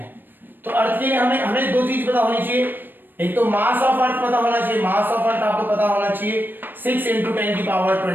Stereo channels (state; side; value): late; left; 0.093 ms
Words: तो अर्थ के लिए हमें दो चीज पता होनी चाहिए, एक तो मास ऑफ अर्थ पता होना चाहिए, मास ऑफ अर्थ आपको पता होना चाहिए 6 ×